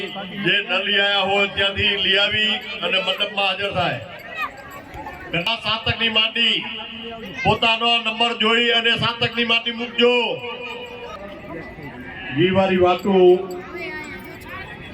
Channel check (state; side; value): identical; both; correlation 1.00